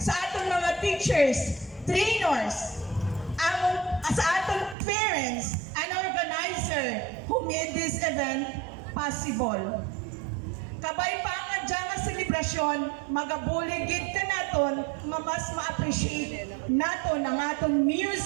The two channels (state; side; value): drops out; left; at 4.8 s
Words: aton mga teachers, trainers, sa aton parents and organizer who made this event possible. Kabay pa nga dyan nga selebrasyon, magabuligid ka naton nga mas ma-appreciate naton ang aton